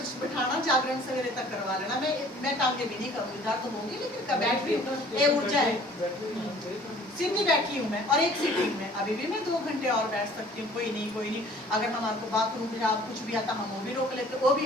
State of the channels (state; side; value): normal; both; correlation 0.52